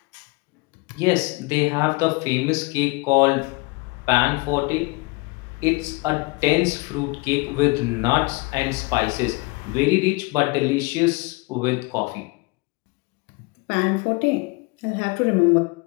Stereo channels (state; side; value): quieter; right; 26.8 dB